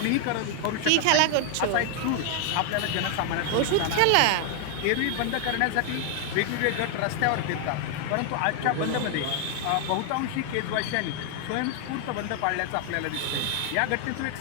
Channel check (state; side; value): different; both; correlation 0.00